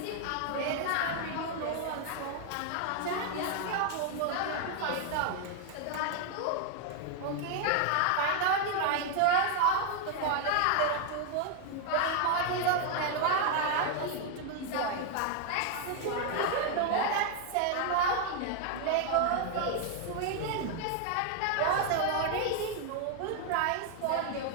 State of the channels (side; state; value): both; different; correlation 0.00